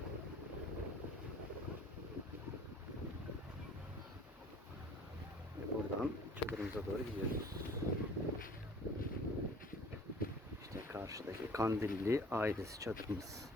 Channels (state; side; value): normal; both; correlation 0.49